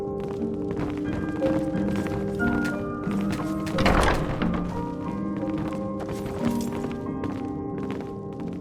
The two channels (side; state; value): both; identical; correlation 1.00